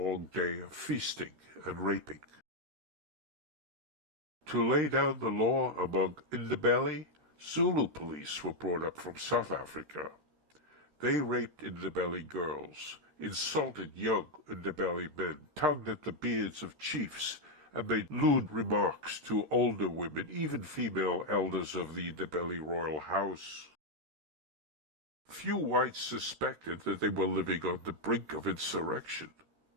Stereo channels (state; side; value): late; left; 13 ms